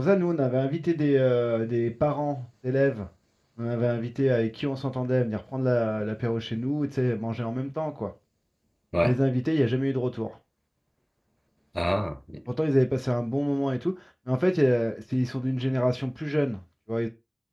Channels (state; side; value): identical; both; correlation 1.00